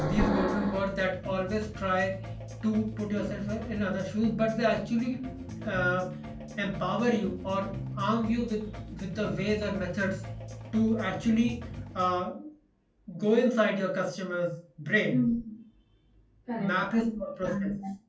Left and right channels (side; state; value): both; identical; correlation 1.00